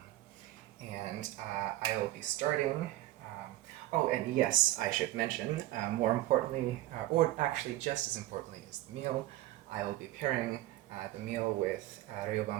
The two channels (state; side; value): quieter; left; 16.0 dB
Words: and I will be starting. Oh, and yes, I should mention, more importantly, or actually just as importantly as the meal, I will be pairing the meal with